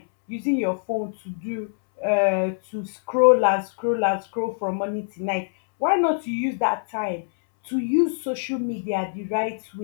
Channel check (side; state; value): right; silent; 63 dB below the other